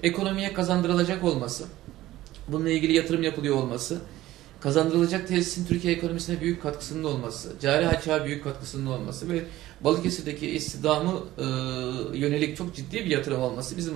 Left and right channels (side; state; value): left; quieter; 15.6 dB